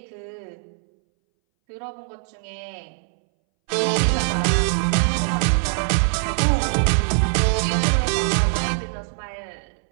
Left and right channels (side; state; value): left; silent; 62 dB below the other